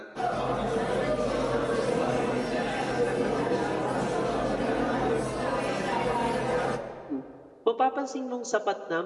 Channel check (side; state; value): both; identical; correlation 1.00